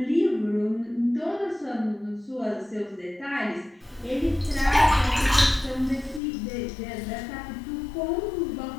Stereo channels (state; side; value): drops out; right; at 6.2 s